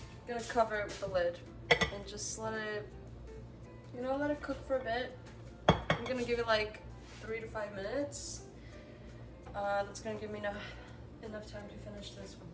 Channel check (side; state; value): both; identical; correlation 1.00